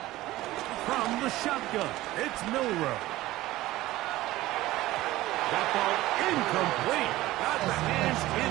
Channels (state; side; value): quieter; left; 16.9 dB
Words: From the shotgun, it's Milroe. That ball incomplete. Got the hands in